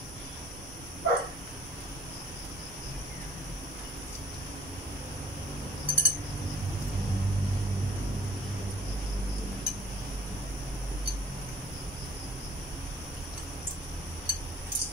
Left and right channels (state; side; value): normal; both; correlation 0.54